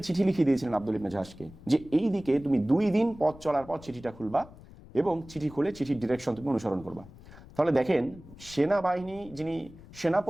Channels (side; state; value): left; noise; rumble, 19 dB below the sound